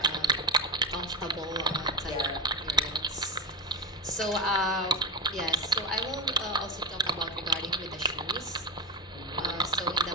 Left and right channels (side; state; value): both; normal; correlation 0.10